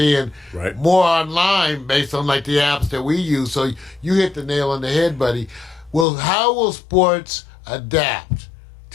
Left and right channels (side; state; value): right; drops out; at 6.1 s